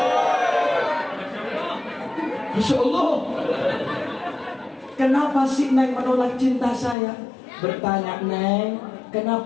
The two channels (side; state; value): right; drops out; at 7.0 s